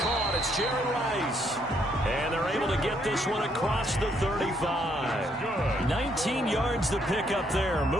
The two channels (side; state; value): both; normal; correlation 0.72